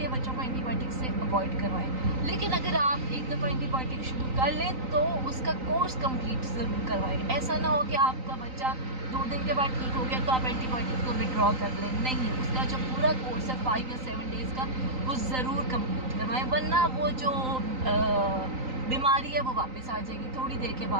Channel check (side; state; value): left; late; 3.9 ms